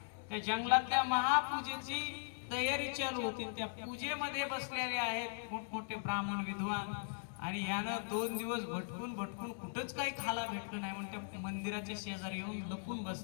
त्या जंगलातल्या महापूजेची तयारी चालू होती। त्या पूजेमध्ये बसलेले आहेत मोठमोठे ब्राह्मण विद्वान आणि यानं 2 दिवस भटकून भटकून कुठंच काही खाला भेटलं नाही म्हणून त्या मंदिराच्या शेजारी येऊन लपून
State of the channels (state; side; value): silent; right; 52 dB below the other